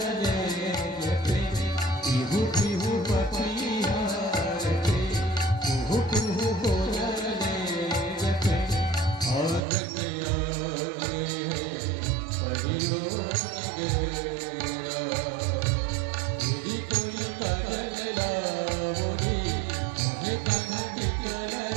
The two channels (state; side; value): drops out; left; at 9.6 s